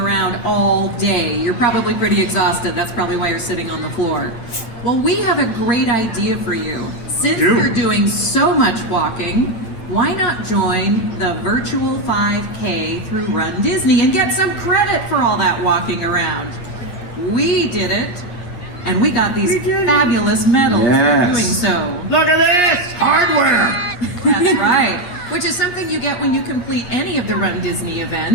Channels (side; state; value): right; late; 8.9 ms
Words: all day. You're probably pretty exhausted. That's probably why you're sitting on the floor. Well, we have a great idea for you. Since you're doing so much walking, why not join the virtual 5K through RunDisney and get some credit for all that walking around? We did it, and we got these fabulous medals for doing so. Look at this! Hardware! That's right. Which is something you get when you complete any of the RunDisney